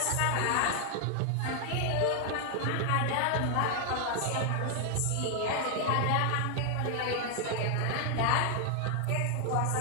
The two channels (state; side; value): different; both; correlation 0.00